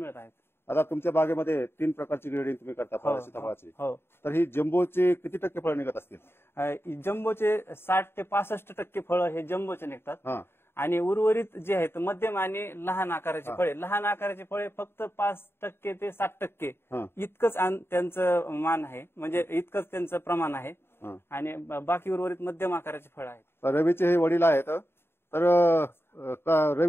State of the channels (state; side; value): late; right; 0.11 ms